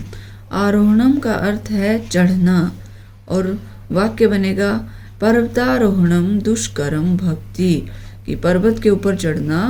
आरोहणम का अर्थ है चढ़ना और वाक्य बनेगा पर्वतारोहणम दुष्करम भवति। कि पर्वत के ऊपर चढ़ना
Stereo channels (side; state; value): both; identical; correlation 1.00